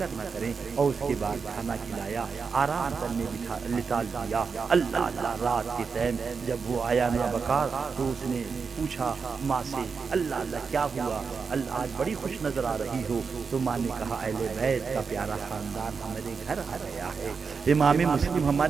نہ کریں۔ اور اس کے بعد کھانا کھلایا، آرام کرنے لٹا دیا۔ اللہ اللہ، رات کے ٹائم جب وہ آیا نہ بکار تو اس نے پوچھا ماں سے، اللہ اللہ کیا ہوا، اللہ آج بڑی خوش نظر آ رہی ہو؟ تو ماں نے کہا اہل بیت کا پیارا خاندان ہمارے گھر آ گیا ہے، امام مسلم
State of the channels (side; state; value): left; quieter; 5.4 dB